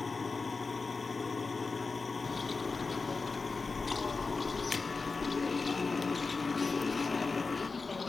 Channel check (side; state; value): right; quieter; 4.2 dB